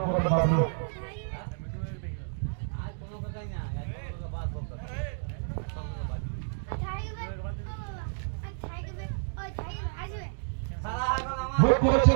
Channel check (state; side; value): silent; left; digital silence